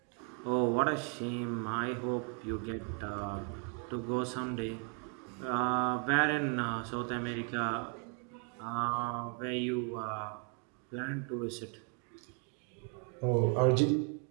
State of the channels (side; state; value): left; quieter; 36.6 dB